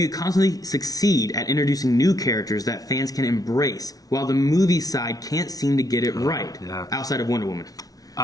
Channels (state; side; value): late; right; 0.18 ms